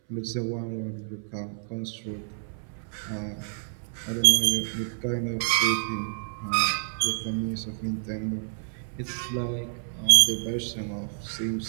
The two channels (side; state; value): left; silent; 59 dB below the other